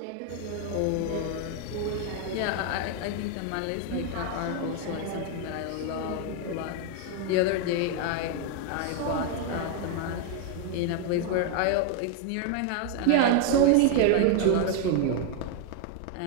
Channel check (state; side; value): different; both; correlation 0.01